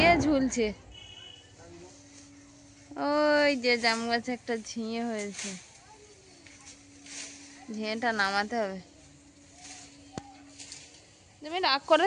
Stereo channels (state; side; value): identical; both; correlation 1.00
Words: ঝুলছে, ওই যে জাম গাছে একটা ঝিঁয়ে হয়েছে, ঝিঁয়েটা নামাতে হবে। তুমি রাগ